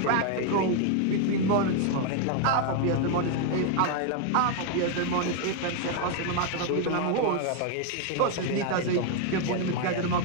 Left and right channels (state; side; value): different; both; correlation 0.00